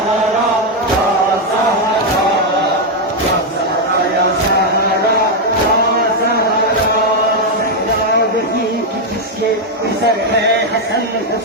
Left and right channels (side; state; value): both; normal; correlation 0.02